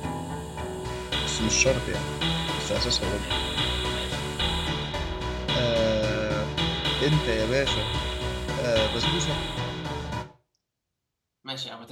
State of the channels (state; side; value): identical; both; correlation 1.00